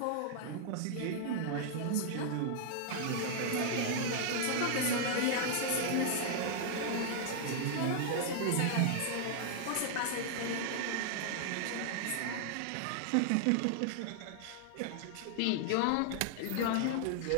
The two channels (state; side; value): different; both; correlation 0.00